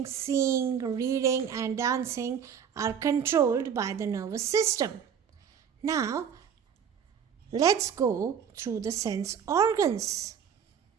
seeing, reading and dancing are controlled by the nervous system. Now, let's go through the sense organs.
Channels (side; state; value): left; quieter; 7.8 dB